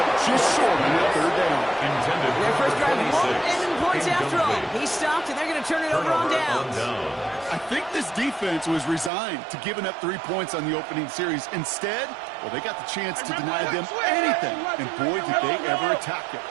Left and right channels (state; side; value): drops out; left; at 9.1 s